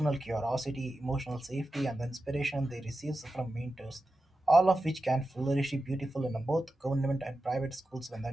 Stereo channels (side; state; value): both; normal; correlation 0.92